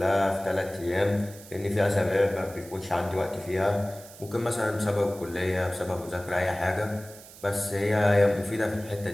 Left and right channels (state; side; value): noise; right; hiss, 19 dB below the sound